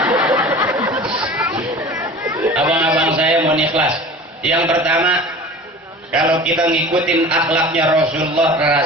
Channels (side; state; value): both; normal; correlation 0.39